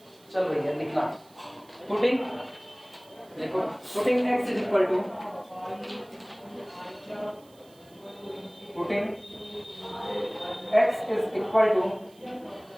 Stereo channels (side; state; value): right; noise; hiss, 28 dB below the sound